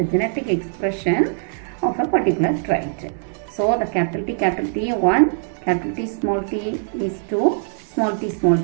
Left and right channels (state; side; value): silent; left; digital silence